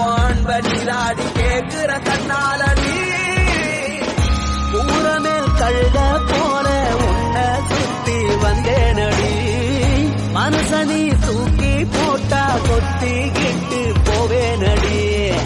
நீராடி கேக்குற கண்ணாலடி ஊரமேல் கழுத போல உன்னை சுத்தி வந்தேனடி மனசனி தூக்கி போட்டா கொத்திக்கிட்டு போவேனடி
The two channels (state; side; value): identical; both; correlation 1.00